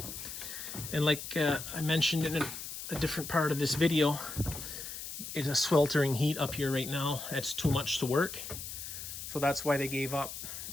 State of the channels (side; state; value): left; noise; hiss, 8 dB below the sound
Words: And like I mentioned in a different part of this video, it's a sweltering heat up here right now. That's too much to work. So that's why they gave up